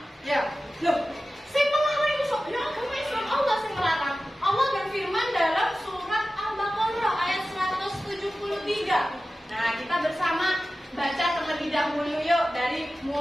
Ya, loh, sing melarang itu ya agama Islam, Allah sing melarang. Allah berfirman dalam surat Al-Baqarah ayat 173. Nah, kita bersama baca terlebih dahulu yuk, dari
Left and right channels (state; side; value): normal; both; correlation 0.95